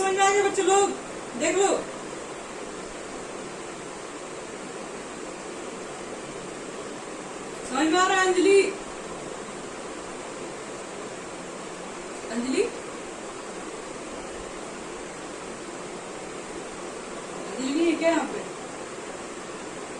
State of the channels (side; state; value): both; identical; correlation 1.00